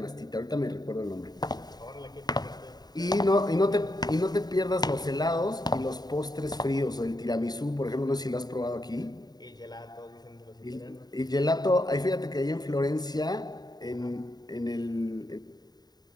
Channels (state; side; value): late; right; 0.20 ms